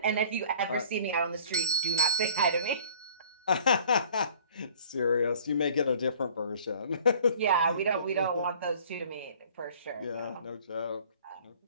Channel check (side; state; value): both; inverted; correlation -0.50